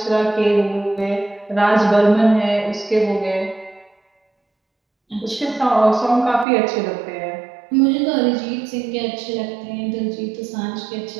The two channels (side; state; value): left; drops out; at 6.5 s